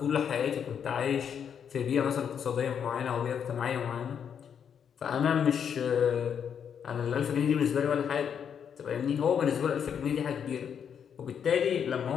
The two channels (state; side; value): quieter; right; 7.9 dB